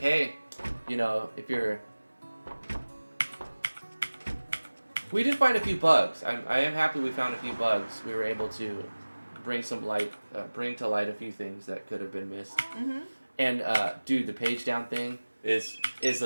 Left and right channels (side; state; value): both; inverted; correlation -1.00